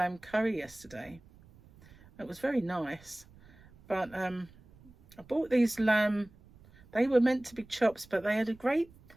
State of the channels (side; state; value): right; noise; rumble, 25 dB below the sound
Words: curry yesterday. It was very nice. But I bought these lamb. They were meant to be chops, but they had